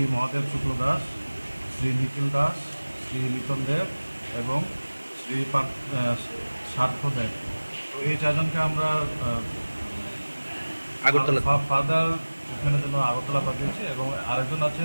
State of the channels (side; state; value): both; inverted; correlation -1.00